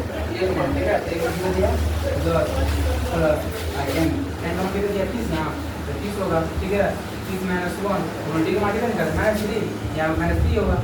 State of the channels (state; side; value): identical; both; correlation 1.00